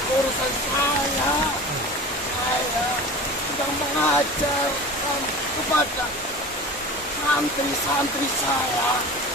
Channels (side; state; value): both; normal; correlation 0.35